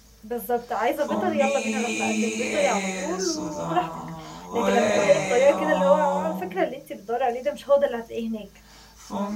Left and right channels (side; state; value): both; identical; correlation 1.00